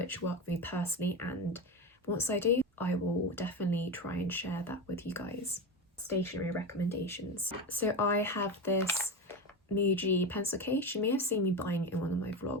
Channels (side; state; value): both; normal; correlation 0.20